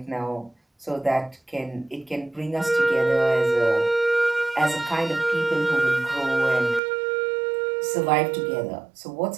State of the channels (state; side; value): drops out; left; at 6.8 s